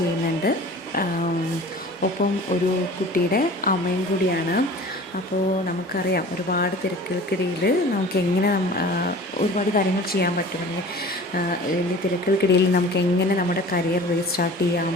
ഒപ്പം ഒരു കുട്ടിയുടെ അമ്മയും കൂടിയാണ്. അപ്പോൾ നമുക്കറിയാം, ഒരുപാട് തിരക്കുകൾക്കിടയിൽ നമുക്ക് എങ്ങനെ ഒരുപാട് കാര്യങ്ങൾ ചെയ്യാൻ പറ്റും. അല്ലെങ്കിൽ തിരക്കുകൾക്കിടയിൽ നമുക്ക് എങ്ങനെ നമ്മുടെ കരിയർ റീസ്റ്റാർട്ട് ചെയ്യാം,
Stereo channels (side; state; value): both; normal; correlation 0.42